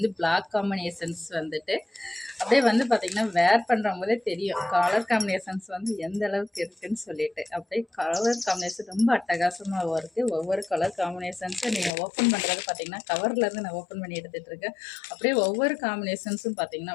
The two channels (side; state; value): right; drops out; at 11.9 s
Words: பிளாக் காம்பினேஷன்ஸ் வந்துட்டு அப்படியே வந்து பார்த்திங்கன்னா வேர் பண்ணுறவங்க போதே தெரியும் கலர் காம்பினேஷன்ஸ் வந்து எந்த அளவுக்கு இருக்குதுன்னு சொல்லிட்டு. அப்படியே கலர் காம்பினேஷன் ரொம்ப அட்டகாசமாக இருக்குது. ஒவ்வொரு கலர் காம்பினேஷன்ஸும் நீங்கள் ஓப்பன் பண்ணுறது பார்த்திங்கன்னா கவர்லேருந்து நான் ஓப்பன் பண்ணி எடுத்துகிட்டு இருக்கேன். அப்படியே ஒவ்வொரு காம்பினேஷன்ஸும் பார்த்திங்கன்னா